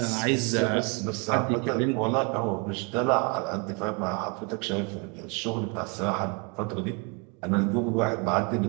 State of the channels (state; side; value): quieter; left; 32.8 dB